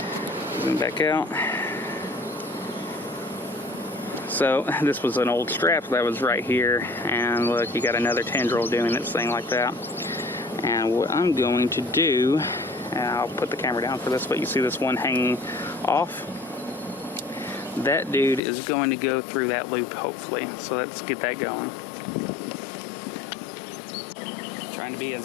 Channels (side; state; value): right; drops out; at 18.4 s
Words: Zoom back out. So this was an old strap that was right here, and look, you got another tendril doing its thing like that. And what I'm going to do, and I'll put the camera down for this, but you see this one hanging off? That dude is going to go through that loop, hopefully. So let's get that going. Trying to be